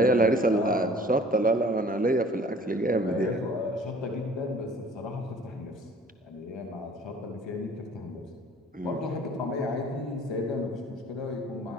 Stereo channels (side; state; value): both; normal; correlation 0.51